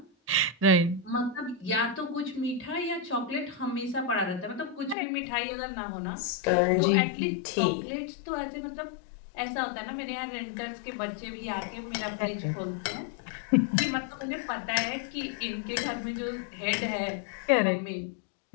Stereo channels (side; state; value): right; drops out; at 5.0 s